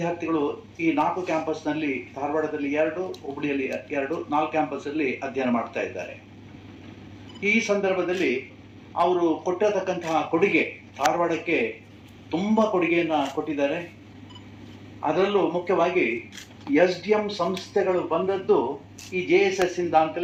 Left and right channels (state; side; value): identical; both; correlation 1.00